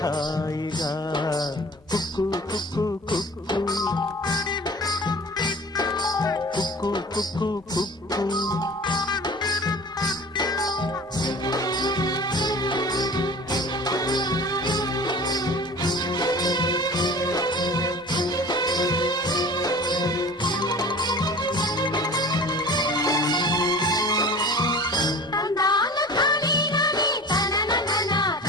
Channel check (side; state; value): both; normal; correlation 0.41